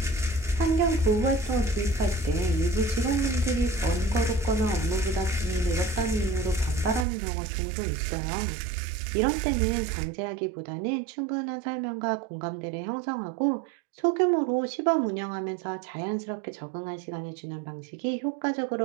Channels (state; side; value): drops out; left; at 7.1 s